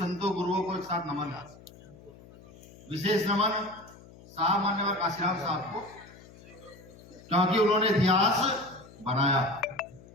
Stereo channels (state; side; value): noise; left; hum, 21 dB below the sound